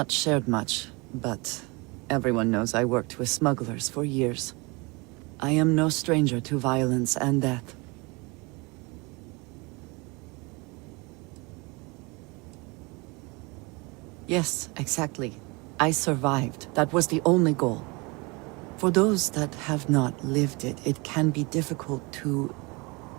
shared much, but everyone knows I worked with smugglers for years. I am no stranger to violence and death. Yes, exactly. I survived. That was the only goal. For those that have not lived it, it can be difficult to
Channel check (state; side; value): quieter; left; 27.1 dB